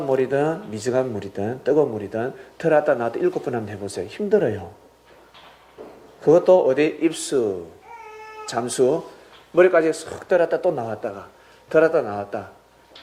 물이든 미지근 물이든 뜨거운 물이든 들어왔다 나왔다 7번 한번 해보세요. 힘들어요. 그것도 어디 입수, 잠수, 머리까지 쏙 들어왔다 또 나왔다가 들어왔다 나왔다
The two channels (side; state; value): both; identical; correlation 1.00